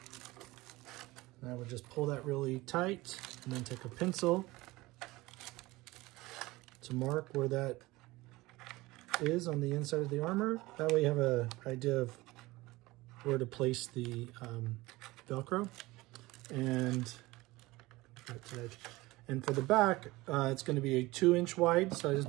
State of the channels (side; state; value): left; quieter; 20.3 dB